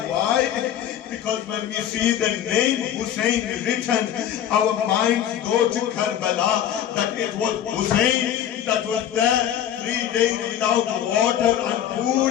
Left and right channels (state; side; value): quieter; right; 10.4 dB